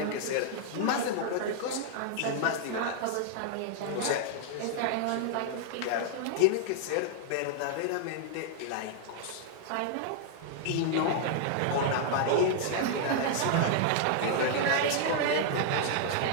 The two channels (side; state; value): both; different; correlation -0.01